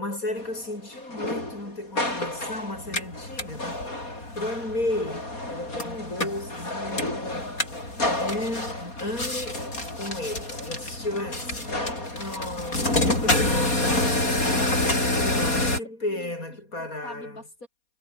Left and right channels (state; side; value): late; right; 4.2 ms